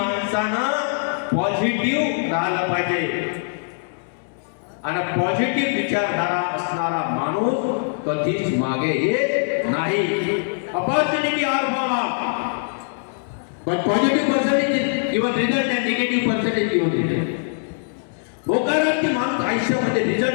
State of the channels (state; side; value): silent; right; digital silence